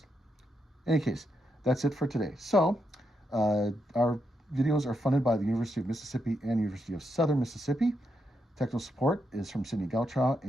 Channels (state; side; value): normal; both; correlation 0.82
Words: In any case, that's it for today. So our videos are funded by the University of Mississippi and University of Southern Mississippi. Technical support is from Sydney Gauchow